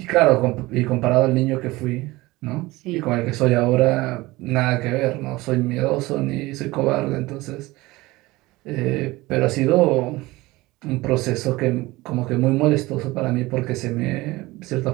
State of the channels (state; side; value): quieter; left; 20.2 dB